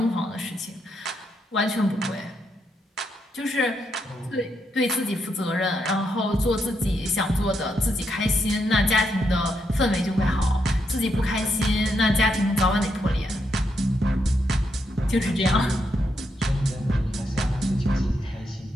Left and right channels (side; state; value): both; normal; correlation 0.80